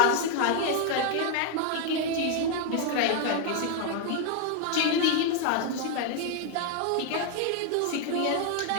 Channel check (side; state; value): both; different; correlation 0.00